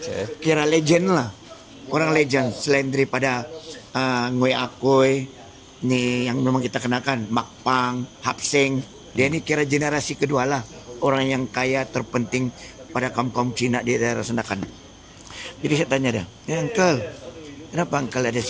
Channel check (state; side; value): identical; both; correlation 1.00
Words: Kira legend lah. Orang legend selain daripada Ngoy Akoy ni yang memang kita kenakan, Makpang, Hapseng. Dia ni kira generasi kedua lah. Orang yang kaya terpenting pada kaum-kaum Cina di daerah Senakan. Jadi saya tanya dia, Uncle, kenapa Uncle ada